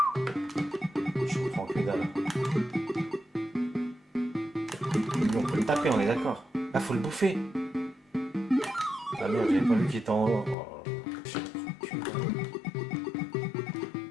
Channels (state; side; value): drops out; right; at 10.6 s